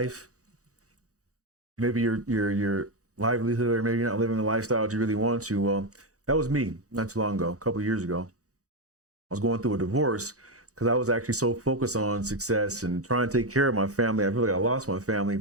maybe your livelihood, or maybe you're not living the lifestyle that you really want to, well, that was me not too long ago, a couple of years ago. I was going through a divorce because I was actually so focused on success and trying to take care of my family. I feel like I lost my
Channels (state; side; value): late; left; 0.66 ms